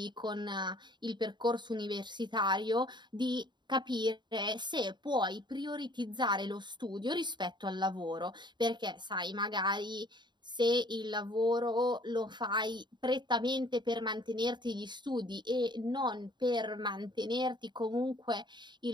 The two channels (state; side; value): late; left; 0.22 ms